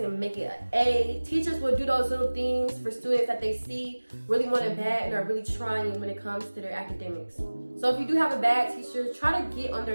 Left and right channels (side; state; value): both; inverted; correlation -1.00